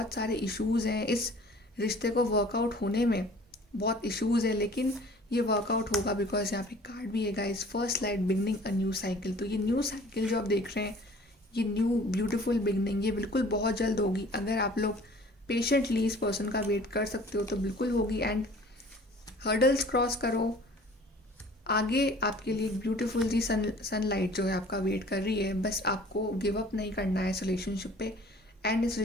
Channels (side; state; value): both; normal; correlation 0.49